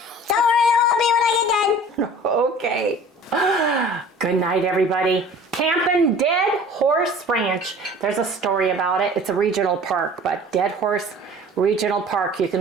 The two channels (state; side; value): normal; both; correlation 0.45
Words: Don't worry, it won't be when I get done. Okay. Good night, everybody. Camping Dead Horse Ranch. There's a story about it. It's a regional park, but Dead Horse Regional Park. You